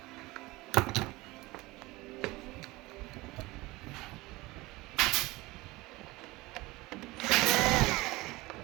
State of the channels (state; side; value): quieter; left; 21.0 dB